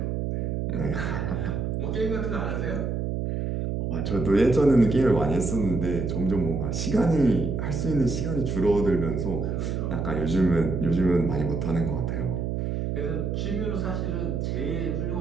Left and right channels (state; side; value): noise; right; hum, 1 dB below the sound